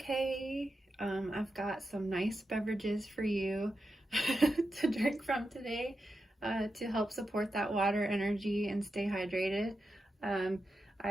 I've got some nice beverages for you to drink from today to help support that water energy and stay hydrated.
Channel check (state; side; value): normal; both; correlation 0.88